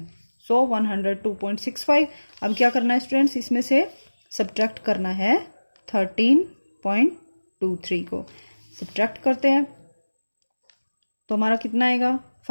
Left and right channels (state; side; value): inverted; both; correlation -1.00